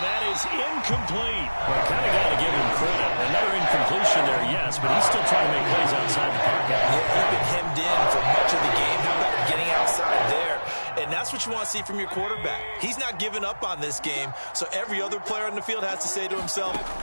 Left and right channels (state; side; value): inverted; both; correlation -1.00